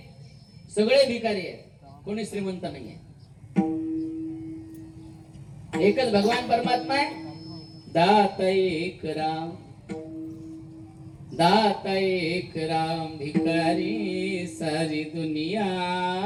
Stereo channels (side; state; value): both; identical; correlation 1.00